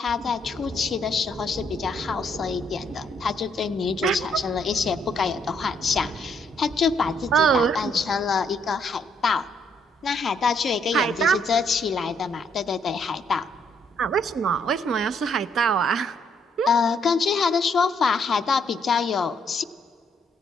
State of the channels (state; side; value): normal; both; correlation 0.71